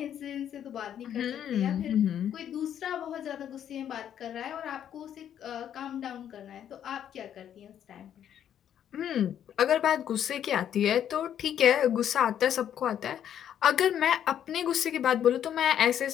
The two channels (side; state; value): right; quieter; 9.8 dB